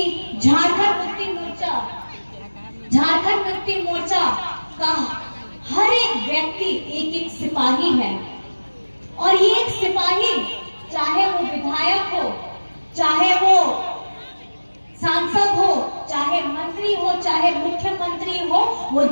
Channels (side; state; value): both; inverted; correlation -1.00